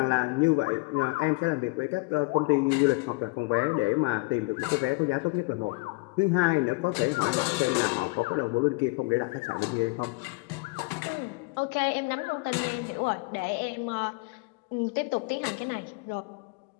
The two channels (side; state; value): right; quieter; 28.7 dB